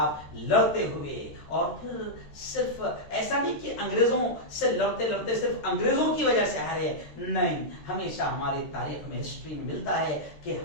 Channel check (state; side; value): late; right; 13 ms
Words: لڑتے ہوئے، اور پھر صرف ایسا نہیں کہ انگریزوں سے لڑتے لڑتے صرف انگریزوں کی وجہ سے ہارے، نہیں، ہمیشہ ہماری تاریخ میں ہسٹری میں ملتا ہے کہ